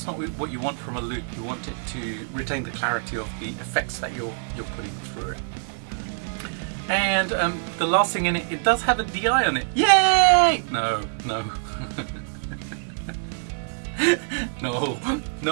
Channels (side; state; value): left; silent; digital silence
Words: not what you want from a loop. You want it to retain the clarity of the effects that you're putting through it. And the last thing in it, it does have a DI on it. Yay! No. No.